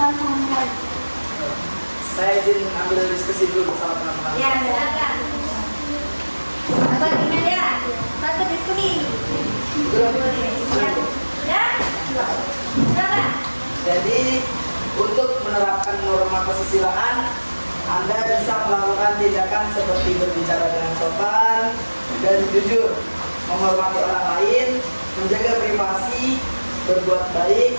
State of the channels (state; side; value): inverted; both; correlation -1.00